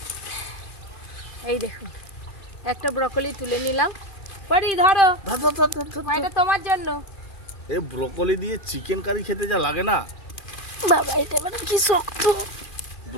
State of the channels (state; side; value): late; right; 2.4 ms